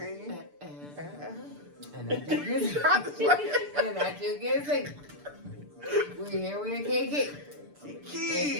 And I just get sick. We're here with KK.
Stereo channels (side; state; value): left; late; 6.8 ms